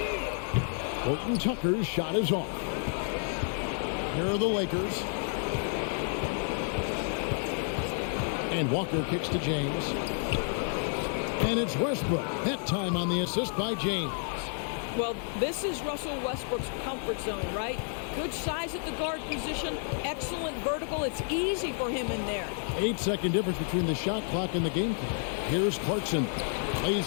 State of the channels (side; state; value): right; silent; 58 dB below the other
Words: HORTON-TUCKER's shot is off. Here are the Lakers. And Walker kicks to James. And it's Westbrook. That time on the assist by James. Well, this is Russell Westbrook's comfort zone, right? Good size at the guard position, excellent vertical. It's easy for him in there. 8-second difference between the shot clock and the game clock. Here's Clarkson.